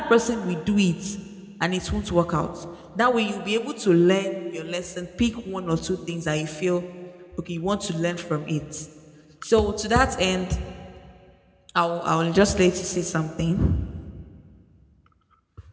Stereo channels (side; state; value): both; identical; correlation 1.00